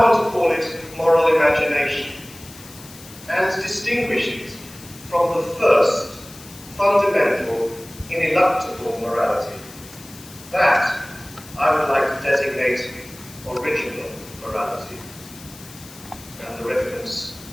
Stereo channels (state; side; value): noise; left; hiss, 18 dB below the sound